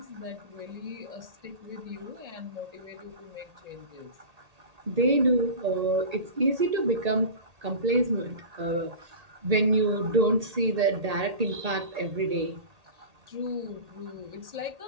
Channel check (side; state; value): left; late; 1.8 ms